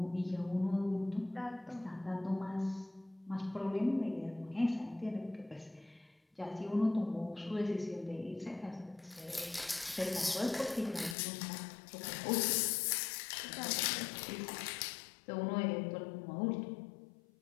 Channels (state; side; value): drops out; right; at 11.2 s